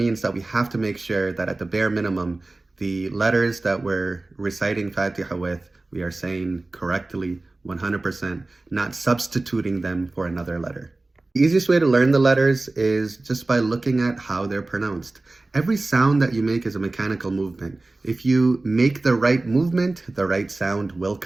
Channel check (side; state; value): left; quieter; 3.1 dB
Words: that we have to make sure that at the bare minimum, the letters that we're reciting Fatiha with, we are saying correctly, 100%, not substituting them for another letter. The easiest way to learn the letters is just by looking at how they're pronounced. Every sound that you make is a mechanical movement. If you make the right movement, the right sound will